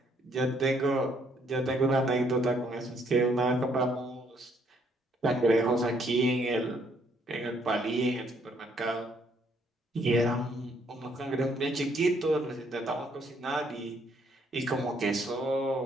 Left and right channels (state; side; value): normal; both; correlation 0.68